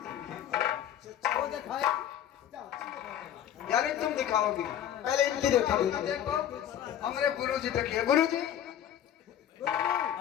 वो दिखाए यानी तुम दिखाओगी पहले इनकी देखा देखो हमारे गुरु जी देखिए। गुरु जी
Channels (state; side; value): quieter; right; 10.4 dB